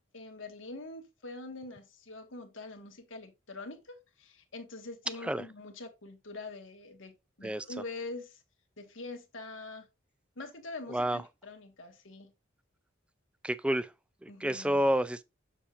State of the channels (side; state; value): both; normal; correlation 0.76